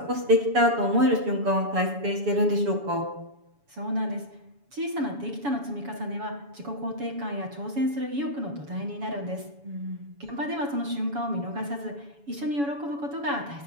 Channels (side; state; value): left; late; 7.1 ms